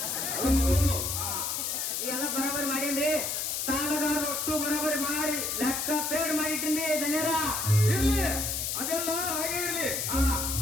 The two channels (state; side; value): noise; left; hiss, 1 dB below the sound